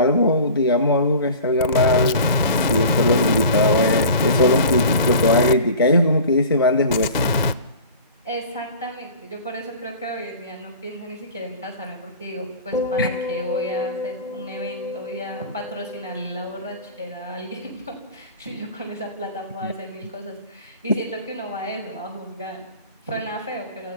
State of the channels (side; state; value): both; inverted; correlation -0.40